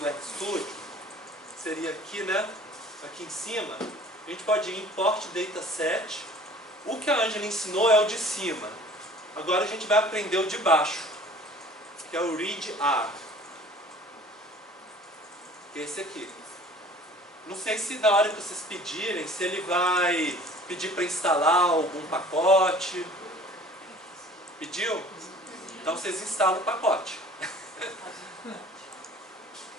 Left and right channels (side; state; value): both; normal; correlation 0.48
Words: RStudio, seria aqui, né? Aqui em cima, a gente pode ir em Import Dataset. O que a Ângela ensinou é o de cima. Agora a gente vai aprender o de baixo, que é o Read R, que é esse aqui. Não sei se na hora que vocês pedirem, se ele vai pedir para instalar algum pacote. Pediu? Então vocês instalam o pacote.